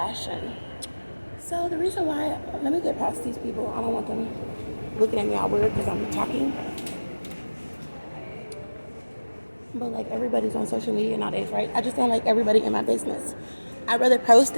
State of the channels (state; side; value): inverted; both; correlation -1.00